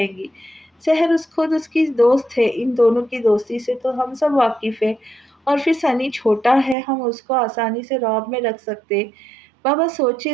گی۔ سحر خود اس کی دوست ہے، ان دونوں کی دوستی سے تو ہم سب واقف ہیں، اور پھر سنی چھوٹا ہے، ہم اس کو آسانی سے رعب میں رکھ سکتے۔ بابا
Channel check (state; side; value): drops out; left; at 6.8 s